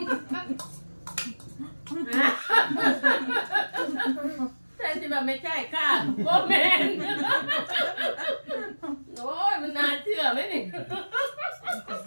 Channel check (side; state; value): both; inverted; correlation -1.00